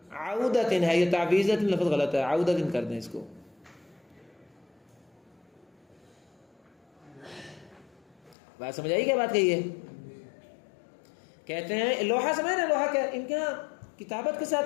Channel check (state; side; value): drops out; right; at 8.3 s